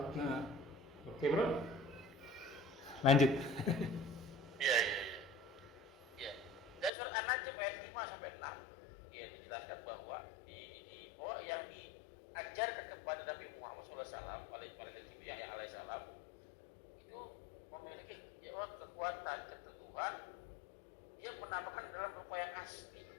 Nah, oke bro, lanjut. Iya. Dan surat An-Najm ayat 5 sampai 6 ya dijelaskan bahwa yang diajarkan kepada Nabi Muhammad SAW alaihissalam itu memiliki kekuatan keteguhan. Dia menamakan dalam rupa yang asli.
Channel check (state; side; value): drops out; right; at 6.9 s